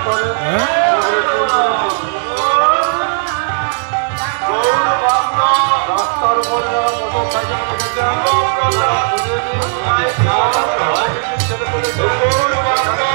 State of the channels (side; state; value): left; silent; digital silence